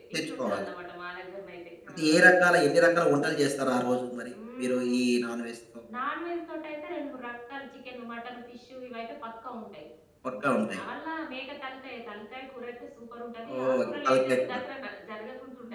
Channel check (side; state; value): both; identical; correlation 1.00